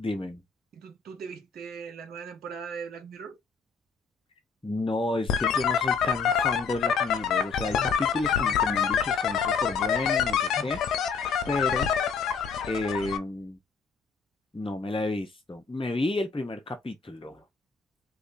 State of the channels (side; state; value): right; quieter; 5.2 dB